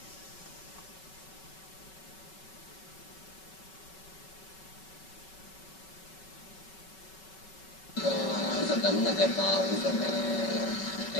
Săptămână de pauză pe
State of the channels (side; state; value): right; late; 5.3 ms